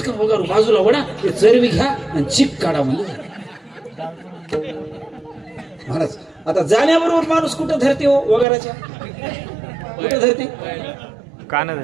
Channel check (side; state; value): left; drops out; at 8.5 s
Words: वगारू बाजूला वडा ते चरबी घ्या आणि चिक काढा म्हणले. महाराज आता जाण्याबरोबर माणूस कुठं धरते हो वगाराच्या, कुठं धरते, कान